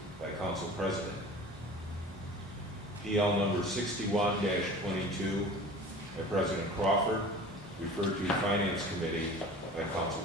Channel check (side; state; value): both; normal; correlation 0.41